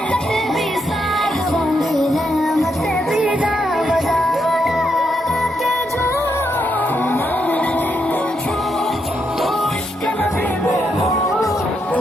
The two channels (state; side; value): normal; both; correlation 0.80